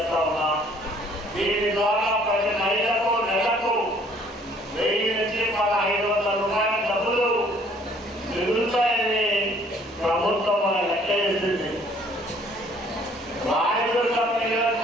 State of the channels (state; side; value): normal; both; correlation 0.59